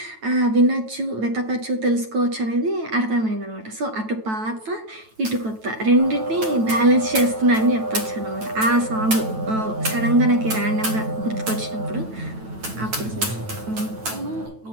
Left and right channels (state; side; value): late; left; 9.1 ms